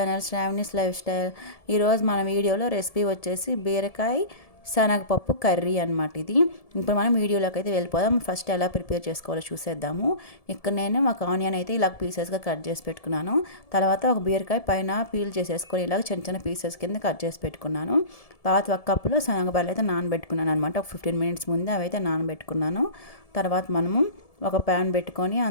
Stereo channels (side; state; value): right; late; 1.7 ms